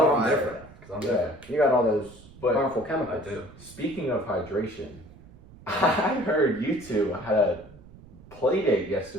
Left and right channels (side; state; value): right; noise; rumble, 21 dB below the sound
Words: different. Because I'm yeah. different. You got all those But harmful I chemicals. do. Speaking of hydration, I heard you two had a play date